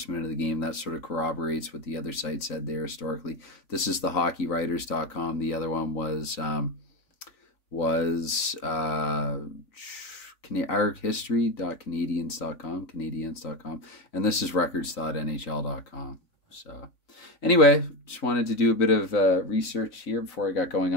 minute of the game. That sort of corroborates what the other site said there historically. This is the hockeywriters.com. The other one was archistory.canadians.com, and this is records.nhl.com. So anyway, just wanted to do a bit of research here before I got going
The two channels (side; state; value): right; late; 3.9 ms